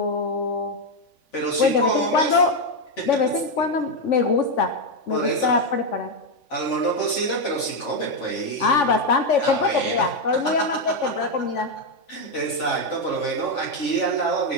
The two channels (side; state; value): right; late; 3.5 ms